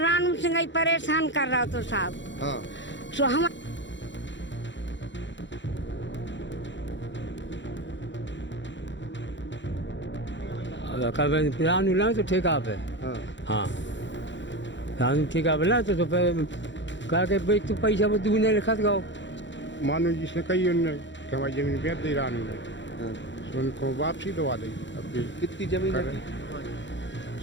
सिंह ही परेशान कर रहा तो साहब। हाँ। सो हम रानू ना तो ठेका पे। हाँ। हाँ रानू ठेका पे ना तो फिर कहा कि भाई तू पैसा वो दूने लिखा गाओ। मानो जिसने कही उनने कि हमारी जमीन बेच दी रानू ने, हाँ। तो उनको वापसी दवा दी। अब भी कितनी जमीन कर है?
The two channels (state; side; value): late; right; 0.54 ms